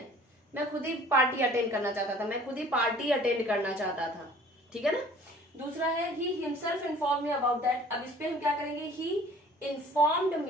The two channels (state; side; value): normal; both; correlation 0.50